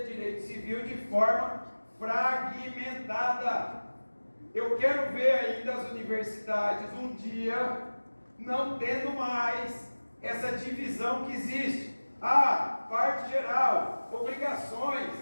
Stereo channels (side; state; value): both; inverted; correlation -1.00